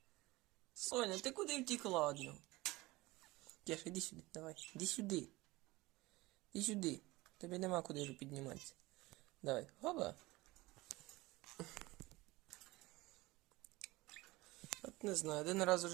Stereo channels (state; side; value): quieter; left; 20.6 dB